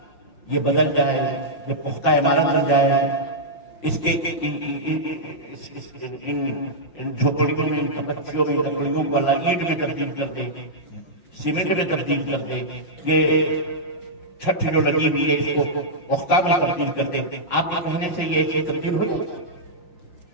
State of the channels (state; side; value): late; right; 5.6 ms